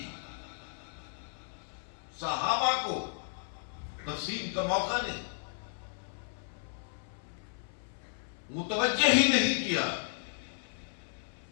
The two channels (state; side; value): silent; right; 55 dB below the other